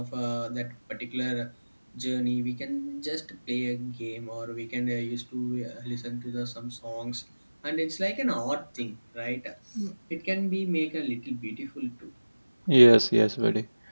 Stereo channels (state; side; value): inverted; both; correlation -1.00